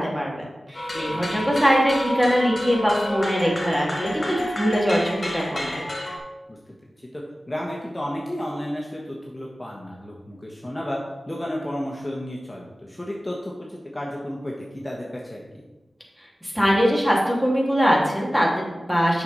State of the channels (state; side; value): normal; both; correlation 0.96